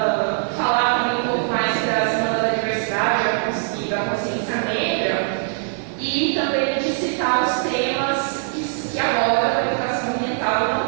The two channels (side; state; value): left; silent; digital silence